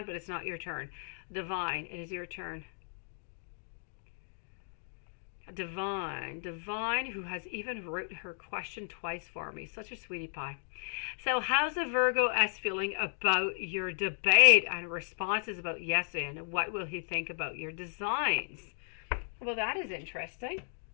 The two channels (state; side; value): silent; right; digital silence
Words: but it's not your turn. Divine, it is your turn. Divine, who has even wrote her question twice for me. Such a sweetie pie. So how's the Virgo S feeling about your debate and responses about yesterday, and what will he think about your designs? Well, that is interesting.